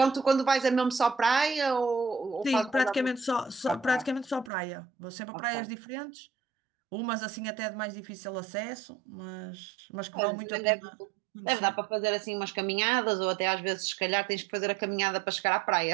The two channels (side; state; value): left; drops out; at 4.5 s